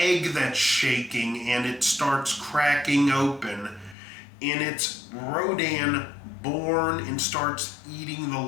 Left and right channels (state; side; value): drops out; right; at 4.0 s